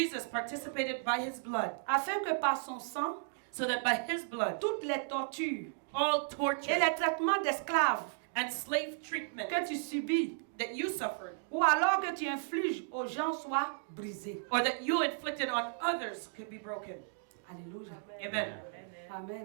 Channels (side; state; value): left; silent; digital silence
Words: participated by his blood afin que par son sang, so that by his blood, toutes les tortures all et torture les traitements d'esclaves and slave treatment que tu subis, that you suffered, ou alors que tu infliges aux gens soient brisés. or that you inflicted on others, could be broken. Alléluia. Amen.